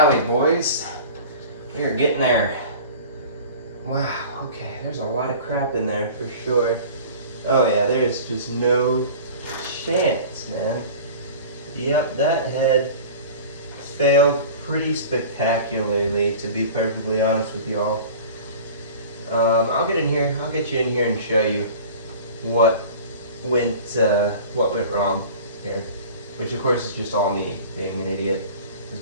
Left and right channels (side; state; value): both; inverted; correlation -0.40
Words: boys. We are getting there. Wow, okay, there's a lot of crap in there for sure. Oh yeah, there's just no chance, man. Yep, that head failed pretty spectacularly, to be perfectly honest with y'all. I'll get in here. I'll get you in here and show you what went wrong here. Which of course is just all me being an idiot